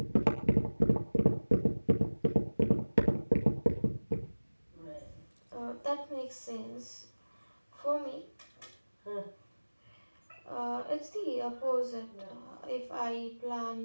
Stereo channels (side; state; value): both; inverted; correlation -1.00